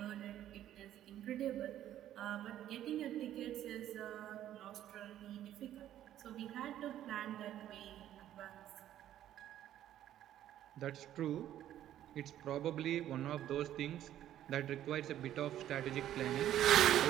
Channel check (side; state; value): left; quieter; 11.9 dB